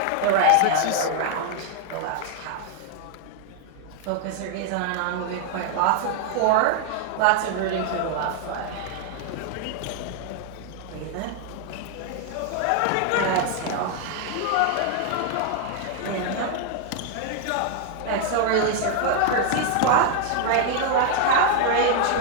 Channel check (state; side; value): different; both; correlation 0.00